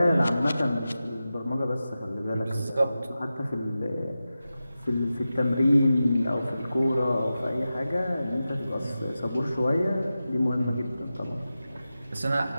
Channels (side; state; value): both; inverted; correlation -0.93